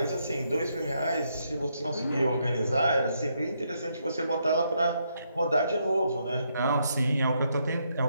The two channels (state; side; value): inverted; both; correlation -0.77